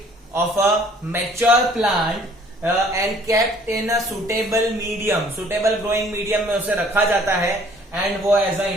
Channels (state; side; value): normal; both; correlation 0.57